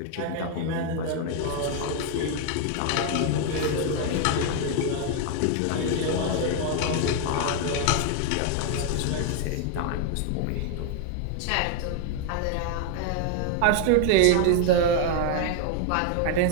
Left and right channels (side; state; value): both; different; correlation 0.01